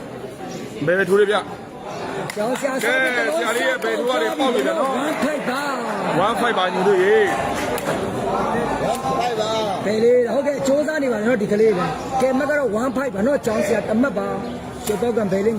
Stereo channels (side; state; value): both; identical; correlation 1.00